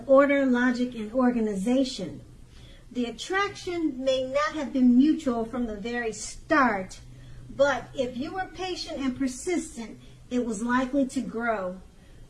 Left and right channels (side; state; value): both; identical; correlation 1.00